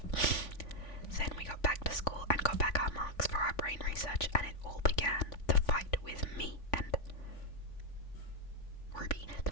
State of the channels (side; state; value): right; late; 3.5 ms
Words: Then we got back to school and got back our marks for our brain research, and it all began the fight with me and Ruby.